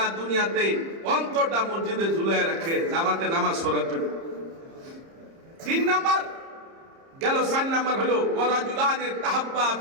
দুনিয়াতে অন্তরটা মসজিদে ঝুলায় রাখে জামাতে নামাজ পড়ার জন্য। 3 নাম্বার গেল। 4 নাম্বার হলো ওয়ারাজুলানি তাহাব্বা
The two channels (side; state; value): left; late; 30 ms